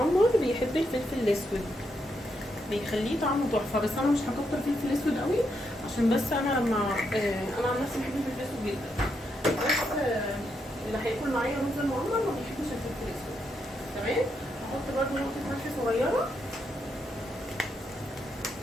بيحب الفلفل الاسود، بيخليه طعمه تحفه، بس انا مش هكتر فلفل اسود قوي عشان بس انا لما انا عن نفسي بحب الفلفل الاسود جدا، بس اللي هياكل معايا رز المعمر ما بيحبش الفلفل الاسود. تمام. هحط برضو نقطه ملح صغيره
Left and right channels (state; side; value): normal; both; correlation 0.80